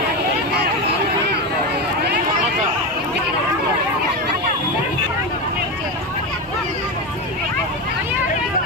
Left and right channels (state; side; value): normal; both; correlation 0.17